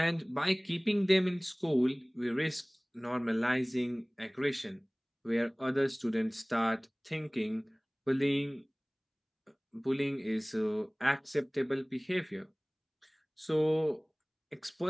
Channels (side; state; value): both; identical; correlation 1.00